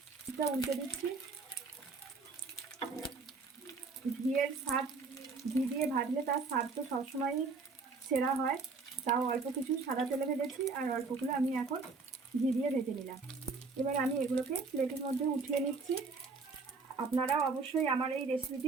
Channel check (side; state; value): left; quieter; 4.3 dB